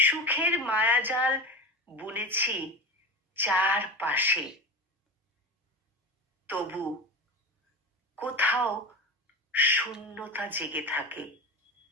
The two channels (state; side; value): normal; both; correlation 0.25